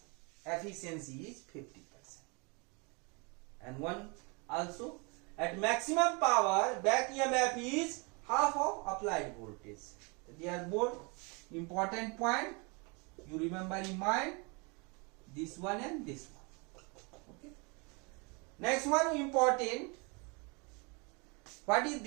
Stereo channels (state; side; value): quieter; left; 30.9 dB